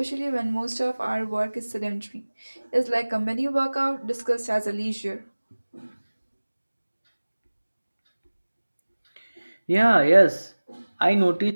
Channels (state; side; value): inverted; both; correlation -1.00